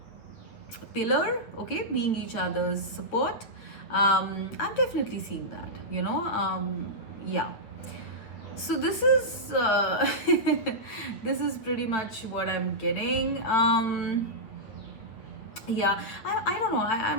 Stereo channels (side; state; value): right; late; 8.7 ms